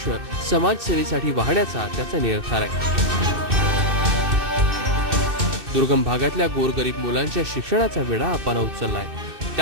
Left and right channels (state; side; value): late; left; 2.6 ms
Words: समाजसेवेसाठी वाहण्याचा त्याचा निर्धार आहे. दुर्गम भागातल्या गोरगरीब मुलांच्या शिक्षणाचा वेढा अप्पानं उचललाय.